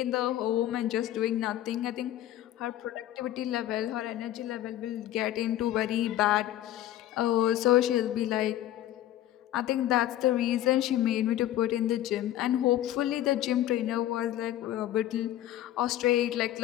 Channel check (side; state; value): right; quieter; 13.2 dB